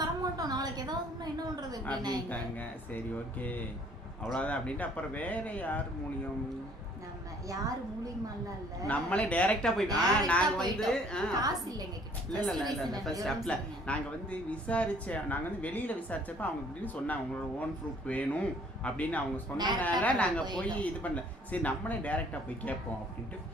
தர மாட்டோம், நாளைக்கு ஏதாவது என்ன பண்றது அப்படின்ட்டாங்க. சரி ஓகே அவ்வளவுதான் அப்படின்ட்டு அப்புறம் வேற யார் மூலியம், நம்ம யார் மூலியமா இல்ல, நம்மளே டைரக்டா போய் நாங்க வந்து காசு இல்லங்க கிட்ட. இல்ல ஃபர்ஸ்ட் ஸ்டெப்ல நாங்க வந்து நாங்க வந்து வெளியில விசாரிச்சப்ப அவங்க இப்படின்னு சொன்னாங்க, உங்களோட ஓன் ப்ரூஃப் வேணும் அப்படின்னு அவங்க சொன்னதால நாங்க போய் இது பண்ணல. சரி நம்மளே டைரக்டா போய் கேட்போம் அப்படின்ட்டு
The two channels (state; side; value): normal; both; correlation 0.58